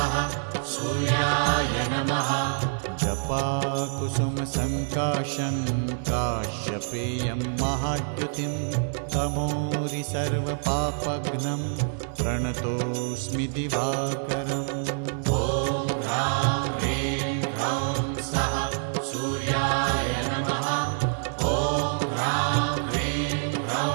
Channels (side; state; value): left; silent; 61 dB below the other